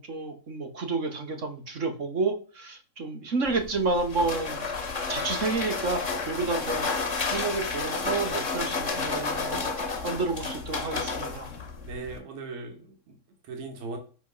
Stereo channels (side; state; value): left; late; 3.6 ms